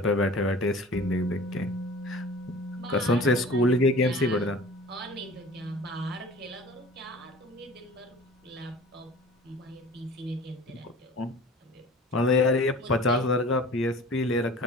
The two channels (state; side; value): normal; both; correlation 0.43